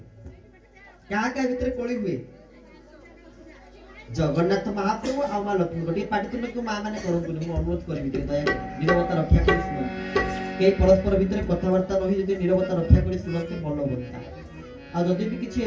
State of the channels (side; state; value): both; identical; correlation 1.00